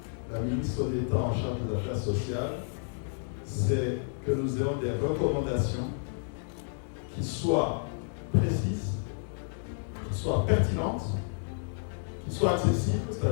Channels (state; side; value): silent; right; digital silence